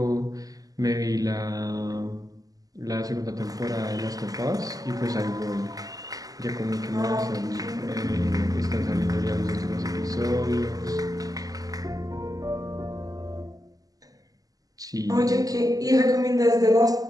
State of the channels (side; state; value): left; late; 0.17 ms